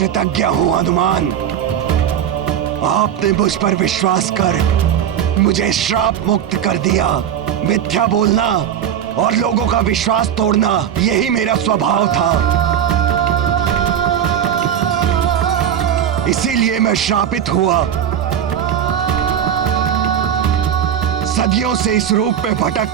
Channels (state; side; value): quieter; left; 9.5 dB